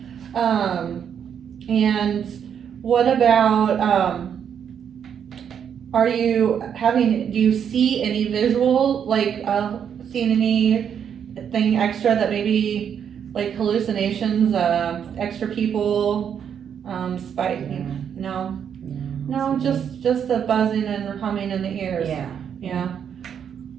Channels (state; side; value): quieter; left; 8.1 dB